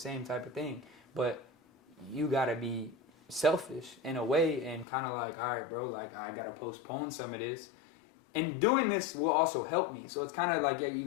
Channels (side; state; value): right; drops out; at 4.9 s